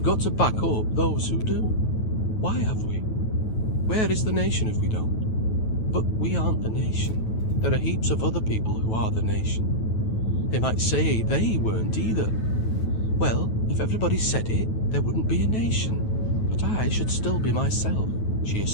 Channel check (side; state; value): right; late; 9.2 ms